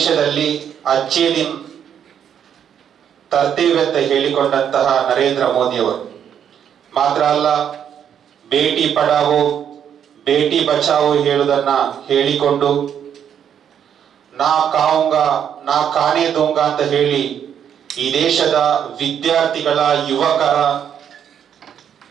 ಅಚ್ಚೇ ದಿನ್ ತರ್ತೇವೆ ಅಂತ ಹೇಳಿಕೊಂಡಂತಹ ನರೇಂದ್ರ ಮೋದಿಯವರು ಮಾತ್ರ ಅಲ್ಲ, ಬೇಟಿ ಪಡಾವೋ ಬೇಟಿ ಬಚಾವೋ ಹೇಳುವುದನ್ನ ಹೇಳಿಕೊಂಡು ನಾ ಕಾವುಂಗಾ ನಾ ಕಾನೇ ದೂಂಗಾ ಅಂತ ಹೇಳಿ ಈ ದೇಶದ ವಿದ್ಯಾರ್ಥಿಗಳ, ಯುವಕರ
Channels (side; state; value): left; quieter; 8.8 dB